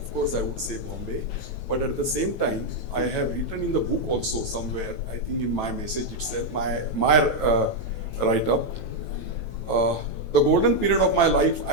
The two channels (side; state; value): right; late; 9.1 ms